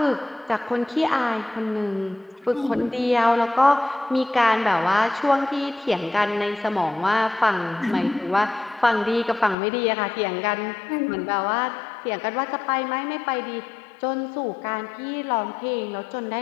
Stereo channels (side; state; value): right; drops out; at 9.6 s